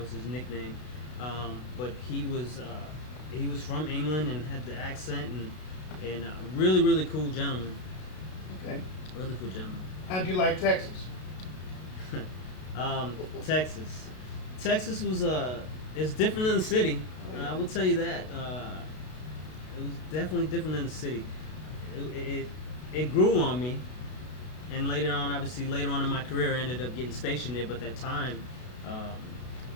was his nickname. But he was he was from England and had the accent and really really cool gentleman. Okay. Really cool gentleman. How'd you like Texas? Texas. Texas was it's different than the city. I will tell you that. It was definitely different than the city. It grew on me, and later on, obviously, later on in my career, I ended up getting stationed there. But at that time,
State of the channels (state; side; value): late; right; 32 ms